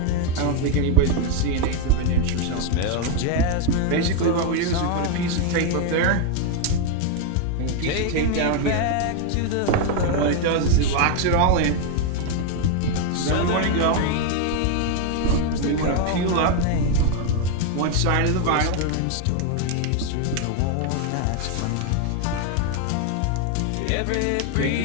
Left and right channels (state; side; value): different; both; correlation 0.01